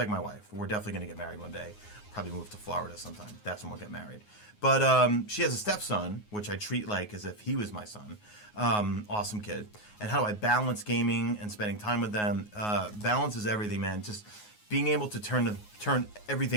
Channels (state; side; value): late; right; 9.5 ms